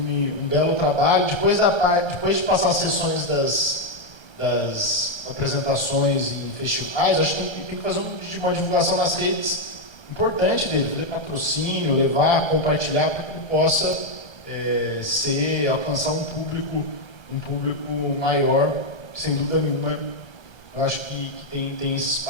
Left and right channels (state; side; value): late; right; 1.2 ms